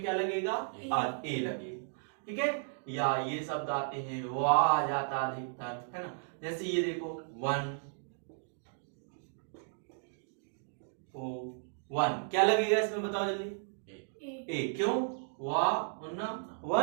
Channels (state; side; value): silent; left; digital silence